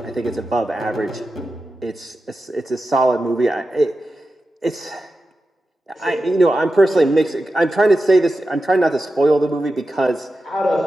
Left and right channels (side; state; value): both; normal; correlation 0.92